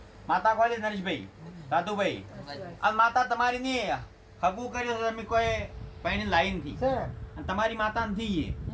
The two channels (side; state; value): both; identical; correlation 1.00